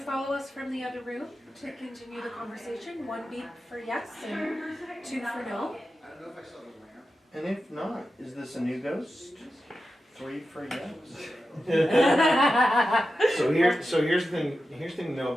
us from the other room to continue the conversation? 1 beep for yes and 2 for no. I don't know if I saw the lamp. And if not, is this a new ghost? 3 for yes. So here's the thing. Here's the thing to know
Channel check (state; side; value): normal; both; correlation 0.91